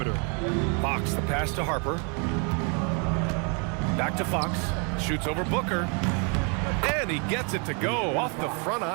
Fox, the pass to Harper. Back to Fox. Shoots over Booker. And he gets it to go off the front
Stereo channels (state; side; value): quieter; left; 36.2 dB